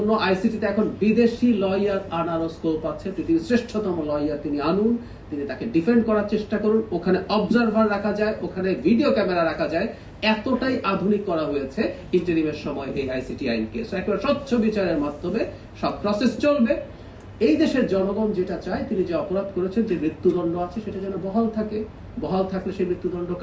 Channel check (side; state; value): both; identical; correlation 1.00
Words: আইসিটিতে এখন বিদেশি লয়ার আনারও স্কোপ আছে। পৃথিবীর শ্রেষ্ঠতম লয়ার তিনি আনুন, তিনি তাকে ডিফেন্ড করার চেষ্টা করুন। ওখানে অবজারভার রাখা যায়, ওখানে ভিডিও ক্যামেরা রাখা যায়, এতটাই আধুনিক করা হয়েছে ইন্টারিমের সময় এই আইসিটি আইনকে। একেবারে স্বচ্ছ বিচারের মাধ্যমে সব প্রসেস চলবে। এই দেশের জনগণ যেটা চায়, তিনি যে অপরাধ করেছেন, যে মৃত্যুদণ্ড আছে, সেটা যেন বহাল থাকে। বহাল থাকলে সেই মৃত্যুদণ্ড